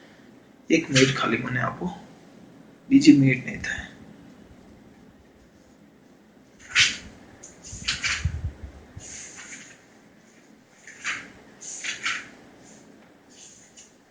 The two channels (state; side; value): identical; both; correlation 1.00